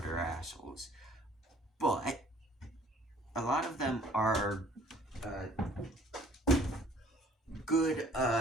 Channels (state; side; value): normal; both; correlation 0.55